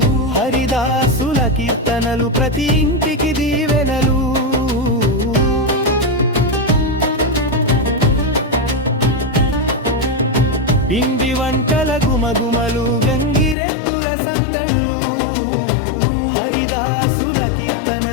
హరిదాసుల కీర్తనలు, ప్రతి ఇంటికి దీవెనలు. పిండి వంటల గుమగుమలు, గంగిరెద్దుల సందళ్ళు, హరిదాసుల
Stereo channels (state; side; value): drops out; right; at 13.6 s